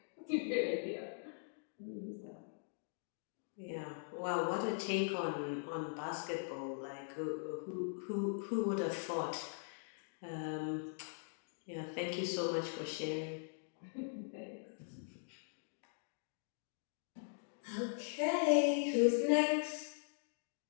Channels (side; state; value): right; silent; digital silence